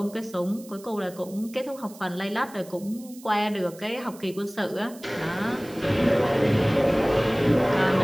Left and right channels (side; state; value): right; noise; hiss, 21 dB below the sound